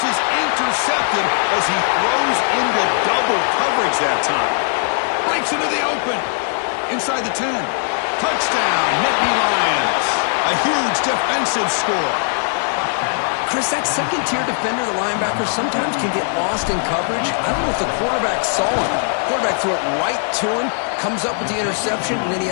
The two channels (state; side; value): silent; right; 66 dB below the other